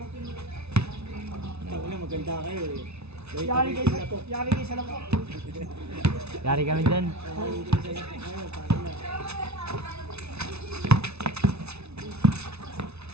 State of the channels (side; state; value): left; late; 0.80 ms